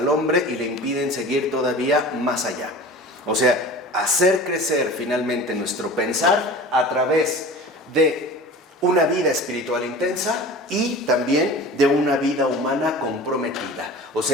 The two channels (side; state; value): both; normal; correlation 0.38